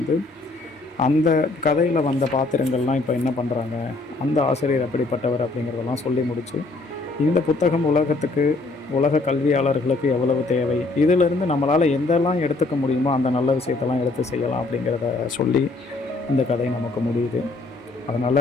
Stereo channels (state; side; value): quieter; right; 3.3 dB